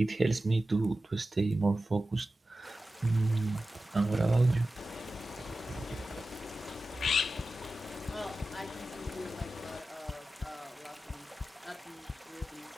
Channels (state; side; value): normal; both; correlation 0.94